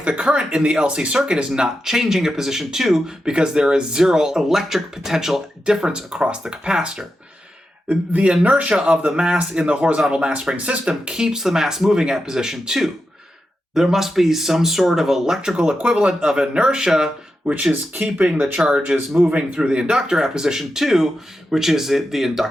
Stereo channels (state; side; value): normal; both; correlation 0.89